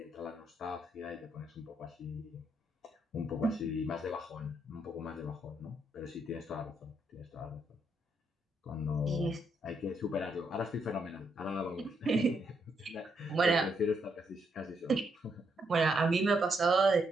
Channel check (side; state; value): both; normal; correlation 0.77